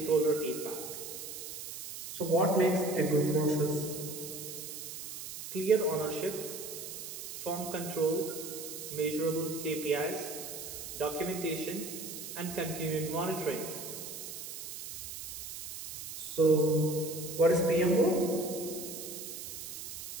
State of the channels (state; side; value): noise; right; hiss, 9 dB below the sound